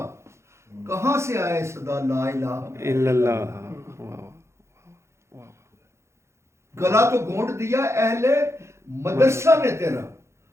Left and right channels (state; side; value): late; left; 0.13 ms